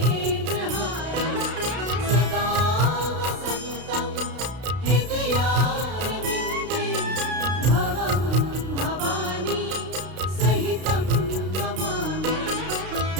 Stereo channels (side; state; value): left; late; 32 ms